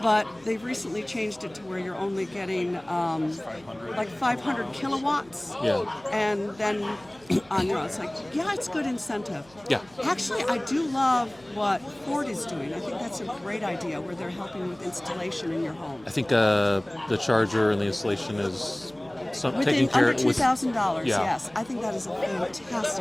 But they've recently changed it to where you're only getting like 500 kilowatts. Yeah. And then on your own, it's like, yeah, it's good incentive. Yeah. Actually, I do love what Ford is doing. I think that's a great idea where they're helping with installation in your home. I think the charger and the installation is taking care under $2,000. Yeah. Yes, I think that is a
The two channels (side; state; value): right; noise; hum, 27 dB below the sound